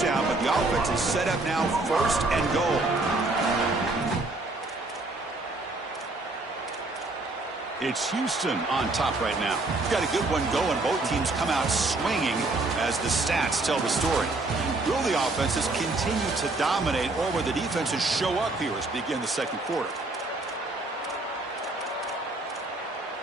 but the offense is set up now 1st and goal. It's Houston on top right now. We've got a good one going. Both teams come out swinging as the stats tell the story. Will the offenses continue to dominate, or will the defenses show up here as we begin the 2nd quarter?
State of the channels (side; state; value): left; quieter; 3.0 dB